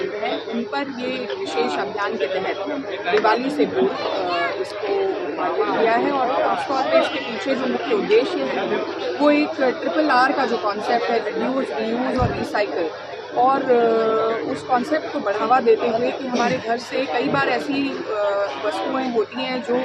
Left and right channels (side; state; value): both; identical; correlation 1.00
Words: हैं उन पर ये विशेष अभियान के तहत दिवाली से पूर्व इसको उद्घाटन किया है। और खासतौर पर इसके पीछे जो मुख्य उद्देश्य है वो एक RRR का जो कॉन्सेप्ट है, रिड्यूस, रीयूज और रिसाइकिल, और उस कॉन्सेप्ट को बढ़ावा देते हुए कि हमारे घर से कई बार ऐसी वस्तुएं होती हैं जो